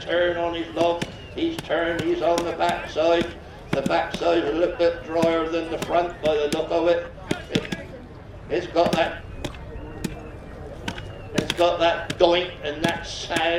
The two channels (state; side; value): identical; both; correlation 1.00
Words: on his log. He's turned, he's on the back side. The back side a little bit drier than the front by the look of it. It's got that doink and that